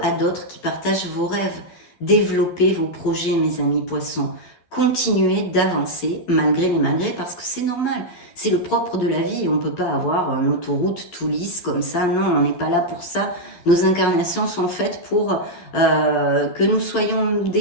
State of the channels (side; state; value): right; late; 12 ms